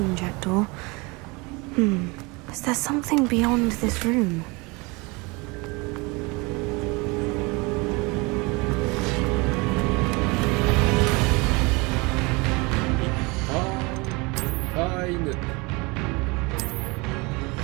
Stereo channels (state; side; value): quieter; left; 26.6 dB